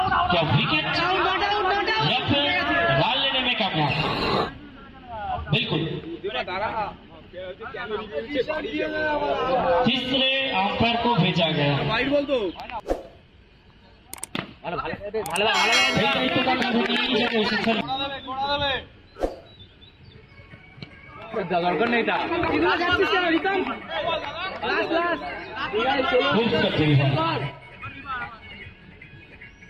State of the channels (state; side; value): identical; both; correlation 1.00